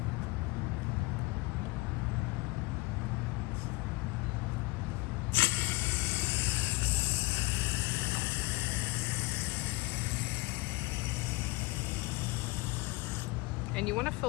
And you want to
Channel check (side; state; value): right; quieter; 23.5 dB